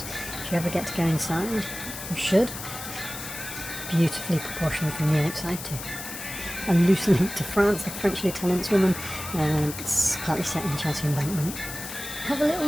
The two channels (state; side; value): noise; left; hiss, 9 dB below the sound